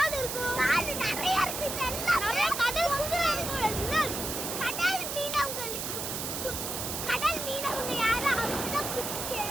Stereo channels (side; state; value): right; noise; hiss, 4 dB below the sound